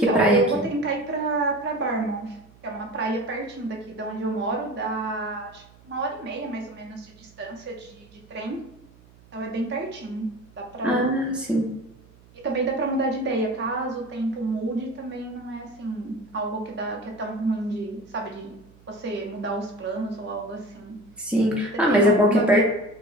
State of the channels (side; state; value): right; noise; hum, 25 dB below the sound